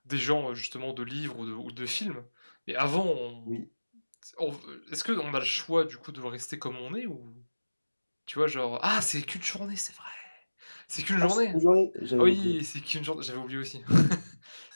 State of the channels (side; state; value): both; inverted; correlation -1.00